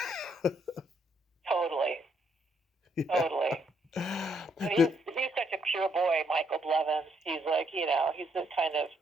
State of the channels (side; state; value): both; normal; correlation 0.73